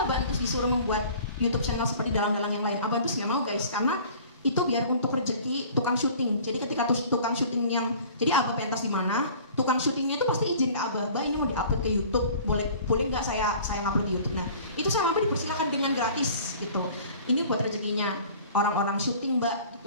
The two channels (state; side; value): inverted; both; correlation -0.48